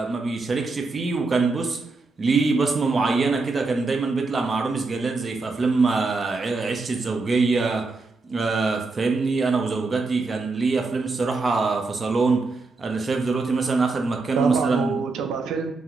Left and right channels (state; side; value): quieter; left; 3.8 dB